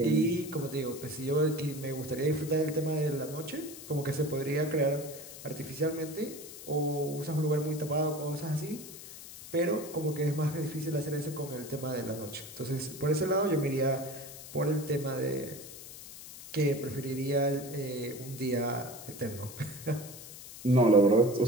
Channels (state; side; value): noise; left; hiss, 14 dB below the sound